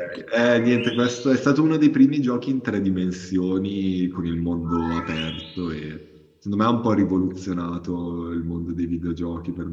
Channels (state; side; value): identical; both; correlation 1.00